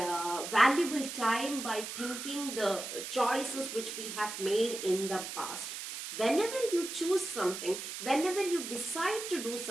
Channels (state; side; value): noise; right; hiss, 7 dB below the sound